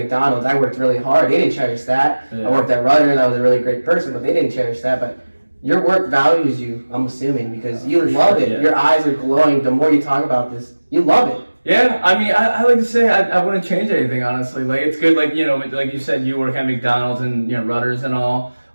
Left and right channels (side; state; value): both; inverted; correlation -1.00